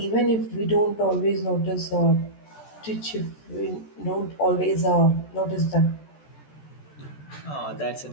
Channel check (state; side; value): late; right; 14 ms